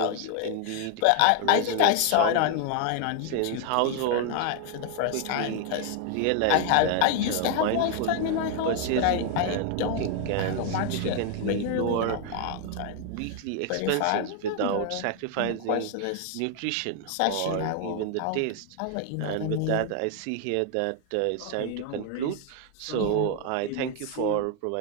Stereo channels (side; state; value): both; different; correlation 0.00